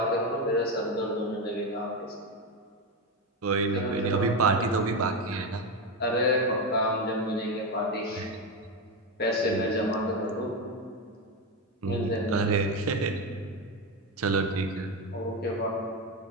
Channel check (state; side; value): normal; both; correlation 0.13